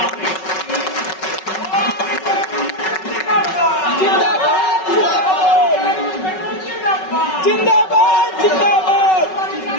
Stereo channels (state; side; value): late; right; 5.3 ms